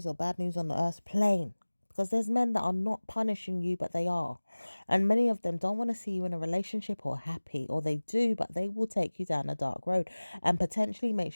or bad news on the earth plane. because there's men that are not punishing you, but they are. And many of them don't want to see you in a relationship or happy, or they do, but they will take you down a dark road and potentially make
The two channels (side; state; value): both; inverted; correlation -1.00